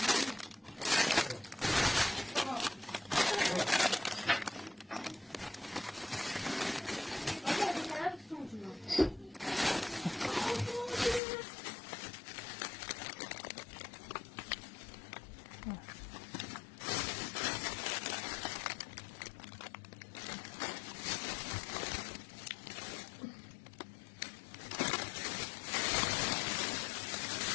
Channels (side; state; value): right; drops out; at 11.2 s